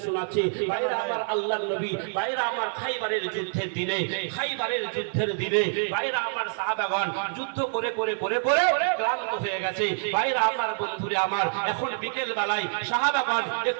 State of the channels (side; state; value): left; silent; digital silence